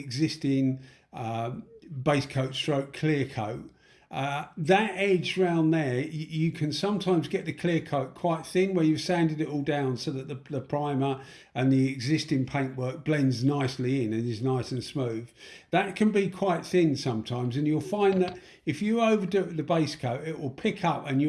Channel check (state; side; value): identical; both; correlation 1.00